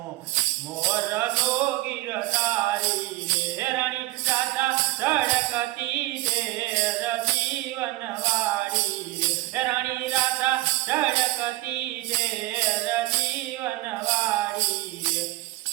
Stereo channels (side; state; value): left; quieter; 18.9 dB